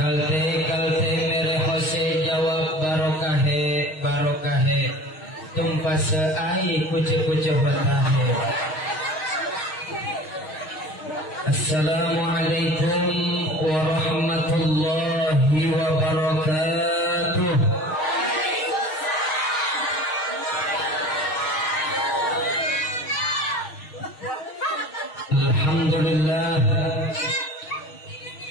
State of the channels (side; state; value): right; late; 6.4 ms